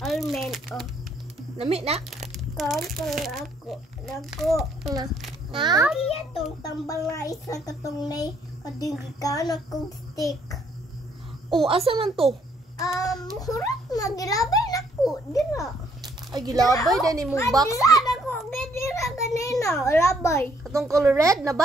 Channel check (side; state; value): both; normal; correlation 0.68